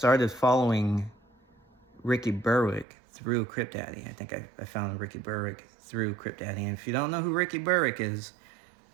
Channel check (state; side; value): drops out; left; at 2.9 s